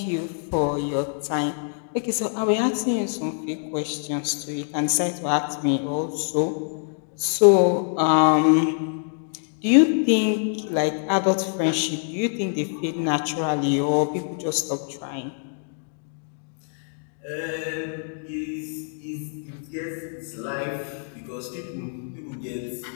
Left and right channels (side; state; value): right; silent; 62 dB below the other